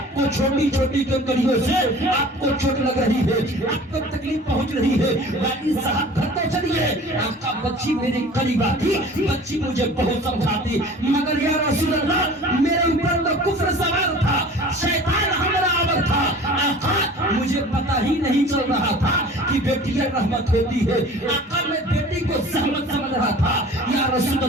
छोटी छोटी कंकरियों से आपको चोट लग रही है, आपको तकलीफ पहुंच रही है, वाली साहब घर तो चलिए, आका बच्ची मेरी करीब आती, बच्ची मुझे बहुत समझाती, मगर या रसूल अल्लाह मेरे ऊपर तो कुफ्र सवार था, शैतान हमारा आवर था, आका मुझे पता ही नहीं चल रहा था कि बेटियां रहमत होती है, आका मैं बेटी को सहमत समझ रहा था, या रसूल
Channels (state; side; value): normal; both; correlation 0.44